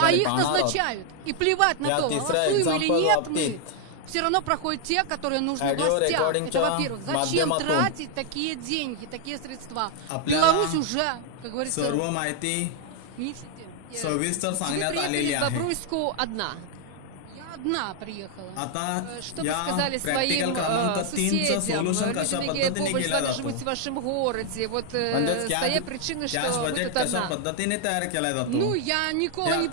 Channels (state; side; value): different; both; correlation 0.00